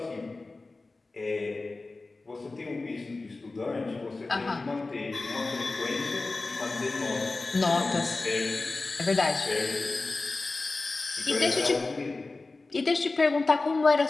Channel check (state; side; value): quieter; right; 3.4 dB